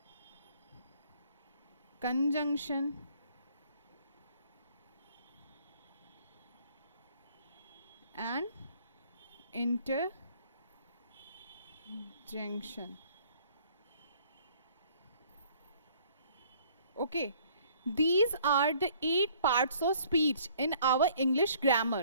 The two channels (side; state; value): both; inverted; correlation -0.58